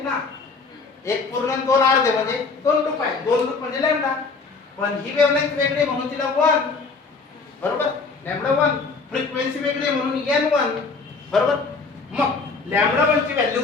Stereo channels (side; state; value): right; quieter; 4.4 dB